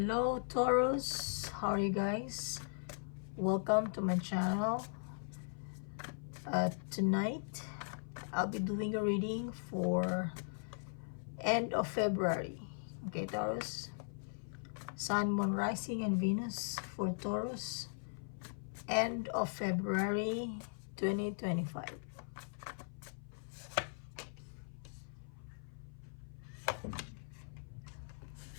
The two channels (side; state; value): right; silent; 52 dB below the other